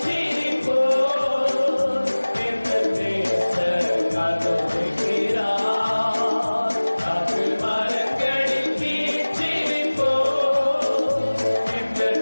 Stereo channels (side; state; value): both; inverted; correlation -1.00